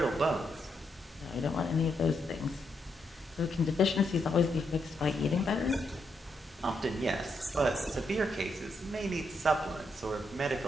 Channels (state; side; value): normal; both; correlation 0.80